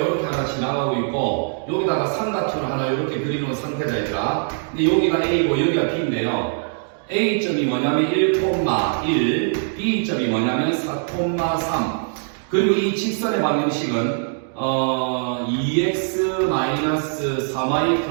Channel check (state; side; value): silent; left; digital silence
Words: 하나 지나가고 있고 여기다가 삼각형을 하나 이렇게 그리는 상태다 얘들아. 근데 여기가 A고 여기가 B인데요. A점이 뭐냐면 1,1, B점이 뭐냐면 4,3. 그리고 이 직선의 방정식은 2x-3y